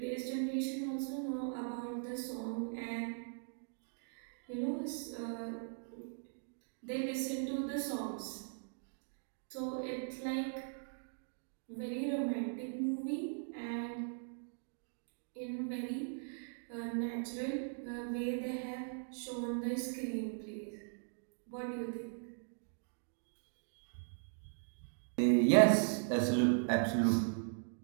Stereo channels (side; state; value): left; silent; digital silence